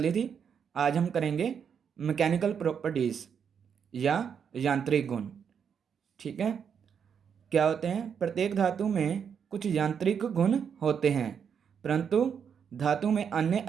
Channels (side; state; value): left; quieter; 7.3 dB